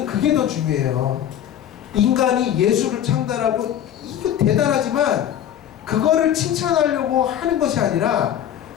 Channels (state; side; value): quieter; right; 10.4 dB